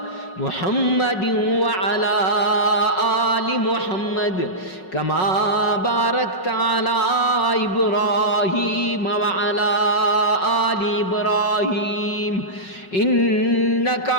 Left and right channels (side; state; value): right; late; 5.4 ms